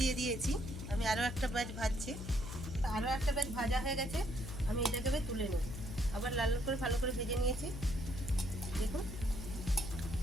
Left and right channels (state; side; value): noise; left; hum, 8 dB below the sound